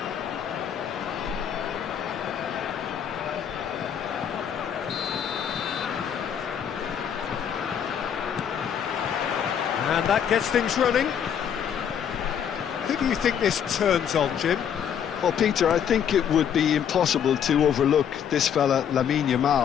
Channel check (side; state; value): right; quieter; 8.5 dB